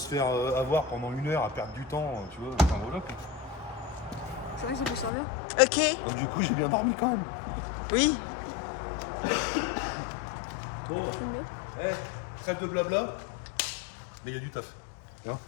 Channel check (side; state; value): right; drops out; at 5.1 s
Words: faire avoir pendant 1 heure à perdre du temps, tu vois, enfin voilà. Quoi. C'est vrai que ça peut servir. Ok. Donc du coup j'ai bien dormi quand même. Oui. Bon, trêve de blabla, mais il y a du taf. Hein.